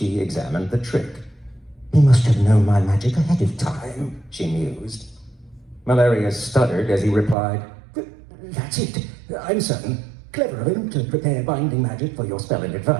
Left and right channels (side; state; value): left; drops out; at 7.4 s